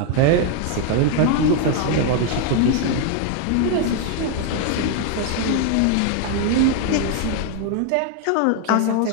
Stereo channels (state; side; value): different; both; correlation 0.01